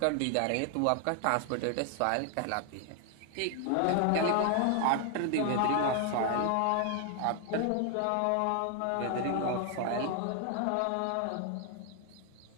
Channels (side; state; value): both; different; correlation 0.00